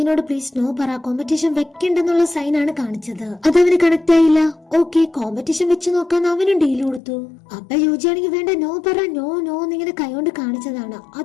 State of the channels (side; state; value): right; drops out; at 7.0 s